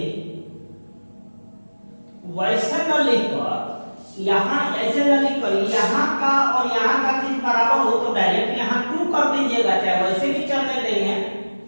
वैसे न लिखकर यहाँ ऐसे न लिखकर यहाँ का और यहाँ का चीज बराबर हो तो डायरेक्ट यहाँ 2 कर दीजिएगा, चाहे वैसे भी चलने देंगे।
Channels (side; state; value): both; inverted; correlation -1.00